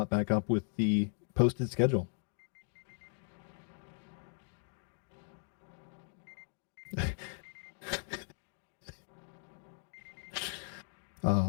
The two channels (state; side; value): silent; right; 53 dB below the other